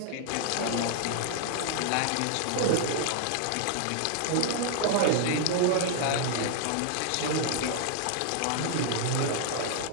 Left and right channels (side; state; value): both; different; correlation -0.01